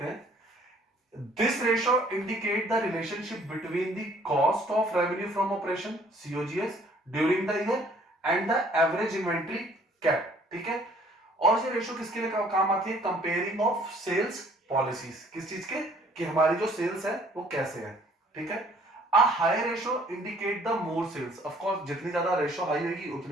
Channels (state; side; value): normal; both; correlation 0.58